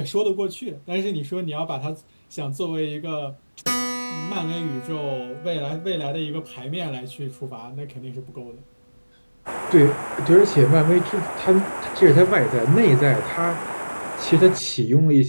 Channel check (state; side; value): inverted; both; correlation -1.00